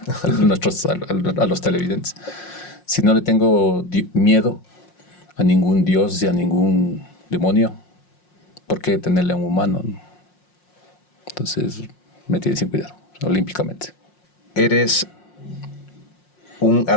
a los televidentes. Si no le tengo miedo a ningún dios y a ningún demonio, ¿por qué tenerle a un humano? Entonces me tiene sin cuidado, olímpicamente. ¿Eres un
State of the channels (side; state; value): right; late; 5.6 ms